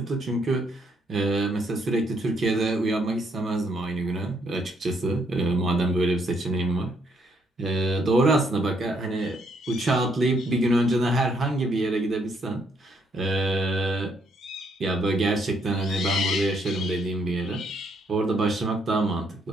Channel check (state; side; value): normal; both; correlation 0.72